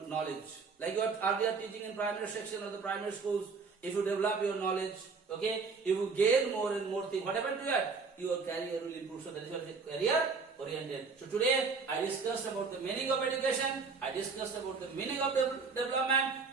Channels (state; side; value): quieter; left; 4.8 dB